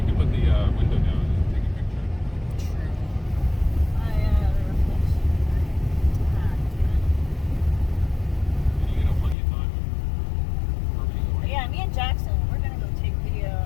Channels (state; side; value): drops out; right; at 9.3 s